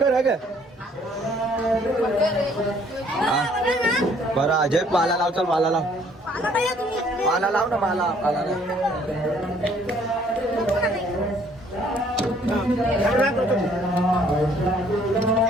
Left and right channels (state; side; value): normal; both; correlation 0.61